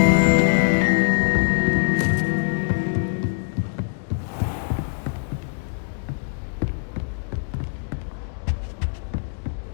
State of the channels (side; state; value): right; silent; digital silence